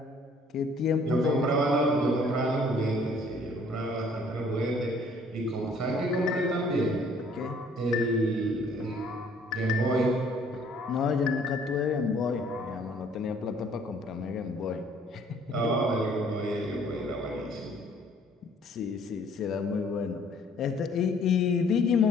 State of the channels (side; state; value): both; normal; correlation 0.59